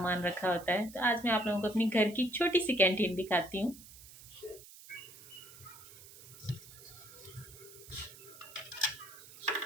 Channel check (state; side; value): noise; right; hiss, 18 dB below the sound